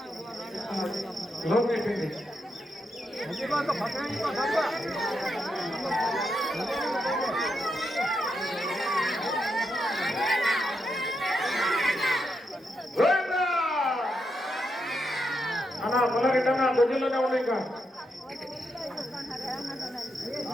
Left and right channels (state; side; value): normal; both; correlation 0.83